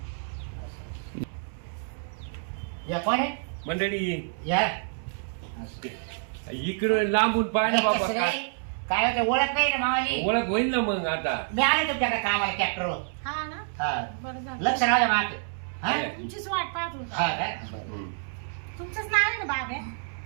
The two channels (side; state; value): left; silent; digital silence